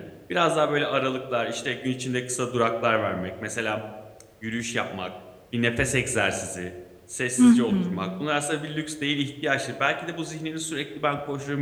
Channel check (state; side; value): identical; both; correlation 1.00